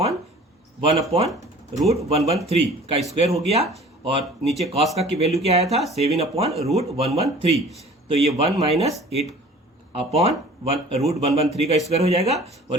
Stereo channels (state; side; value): normal; both; correlation 0.47